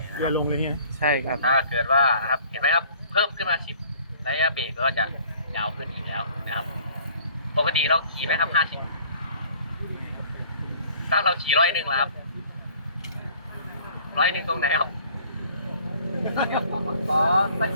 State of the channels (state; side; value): inverted; both; correlation -0.53